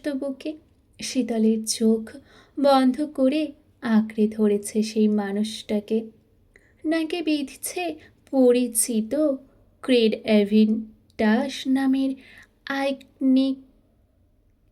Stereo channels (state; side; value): identical; both; correlation 1.00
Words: বুকে। শীতলের চোখ বন্ধ করে আঁকড়ে ধরেছে সেই মানুষটাকে। নাকে বিঁধছে পরিচিত ক্রেড এভিন ডাস নামের আইকনিক